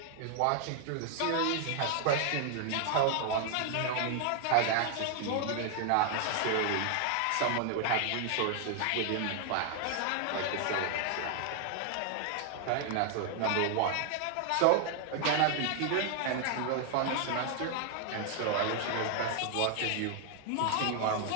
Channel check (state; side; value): different; both; correlation 0.00